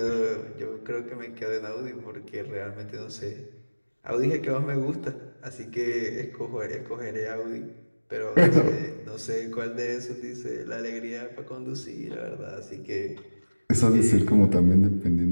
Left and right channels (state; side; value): inverted; both; correlation -1.00